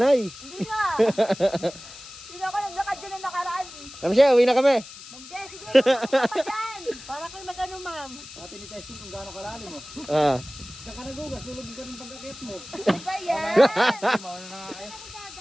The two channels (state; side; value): noise; left; hiss, 16 dB below the sound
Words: Hindi nga. Hindi ako naglakad dyan na nakaraan. Kami siya, uwi na kami. Ma'am Je, sige. Tulungan pa dyan. Para kayo mag-ano, ma'am. Dati ni testing kung gaano kalalim mo. Ah. Saka nagugas, tulog ka ng pagkakit mo. Ano ba yan? Mauna na nga kayo.